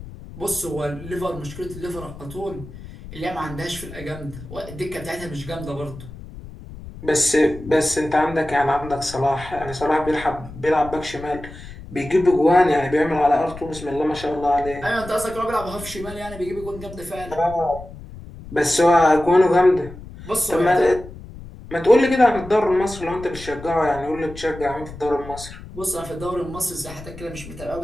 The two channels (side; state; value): left; noise; rumble, 15 dB below the sound